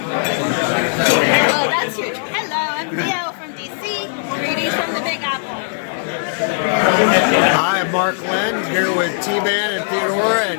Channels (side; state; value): right; silent; digital silence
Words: Well, that's huge. Hello, I'm Theo from DC. Greetings from the Big Apple. Hi, I'm Mark Lend here with T-Man and Theodora